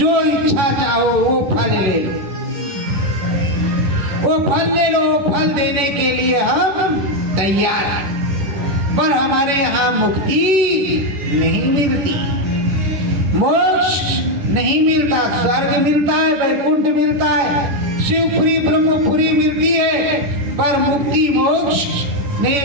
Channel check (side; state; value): left; late; 11 ms